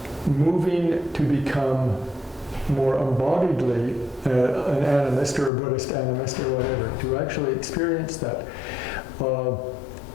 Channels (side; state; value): right; drops out; at 5.5 s